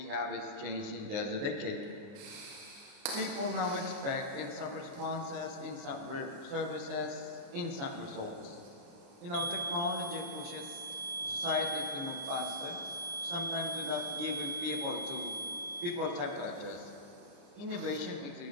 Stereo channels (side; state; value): left; late; 29 ms